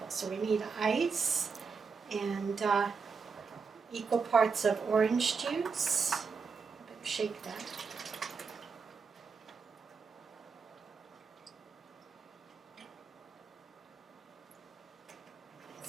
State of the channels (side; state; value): left; quieter; 5.3 dB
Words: So we need ice and equal parts of orange juice. I better shake that.